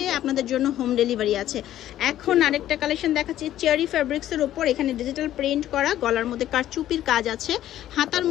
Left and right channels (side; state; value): right; quieter; 12.6 dB